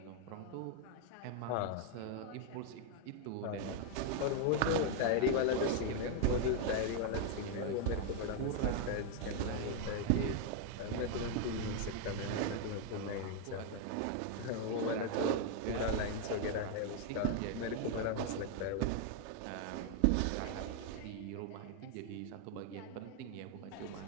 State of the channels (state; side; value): different; both; correlation 0.00